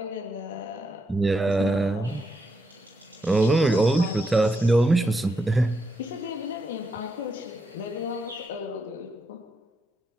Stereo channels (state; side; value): normal; both; correlation 0.82